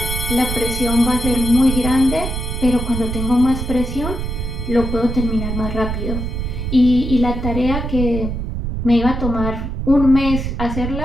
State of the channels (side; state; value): right; noise; rumble, 4 dB below the sound